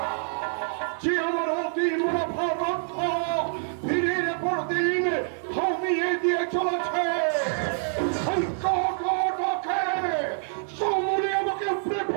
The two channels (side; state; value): left; silent; digital silence